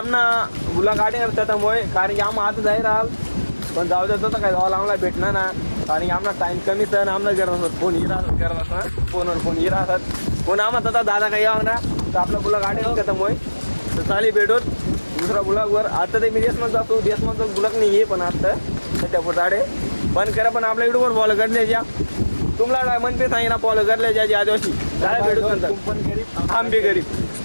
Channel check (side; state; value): both; inverted; correlation -1.00